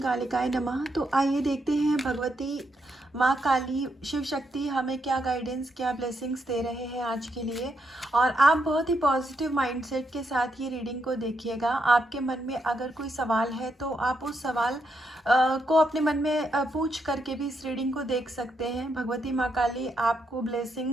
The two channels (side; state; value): both; normal; correlation 0.80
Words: नमः। तो आइए देखते हैं भगवती माँ काली शिव शक्ति हमें क्या गाइडेंस, क्या ब्लेसिंग्स दे रहे हैं आज के लिए। और आप बहुत ही पॉजिटिव माइंडसेट के साथ ये रीडिंग को देखिएगा। आपके मन में अगर कोई सवाल है तो आप उस सवाल को अपने मन में पूछ करके भी इस रीडिंग को देख सकते हैं। भगवती माँ काली आपको